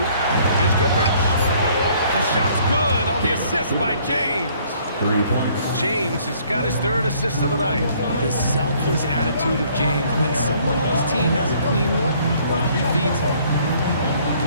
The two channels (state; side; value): inverted; both; correlation -0.61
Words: Here's Goodrich. The shot's good on the assist by James. 3 points. James has got his 3rd assist of the night. The selfless attitude of James. When someone on his team has a clean look, well, he feeds it.